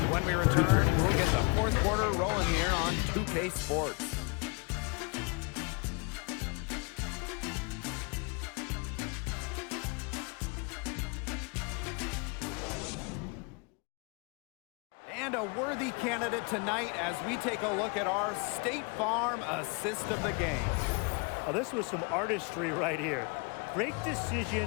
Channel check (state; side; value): quieter; right; 31.6 dB